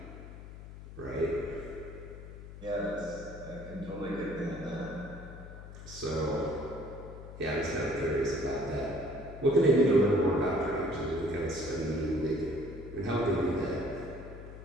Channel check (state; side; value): noise; left; hum, 13 dB below the sound